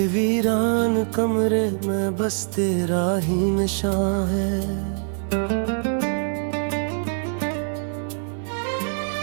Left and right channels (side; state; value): left; silent; digital silence